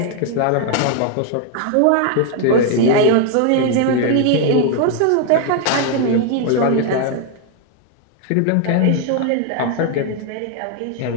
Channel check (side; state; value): both; different; correlation 0.01